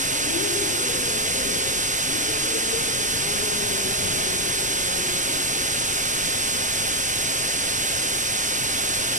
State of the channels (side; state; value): left; noise; rumble, 20 dB below the sound